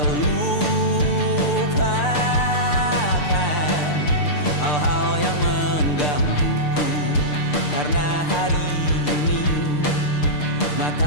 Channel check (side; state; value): right; late; 6.8 ms